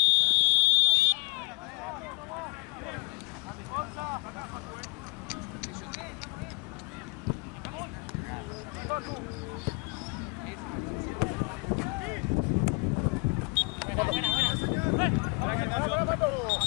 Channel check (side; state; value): right; quieter; 30.3 dB